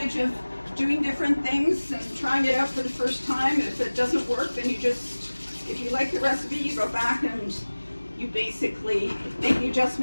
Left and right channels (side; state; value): both; inverted; correlation -1.00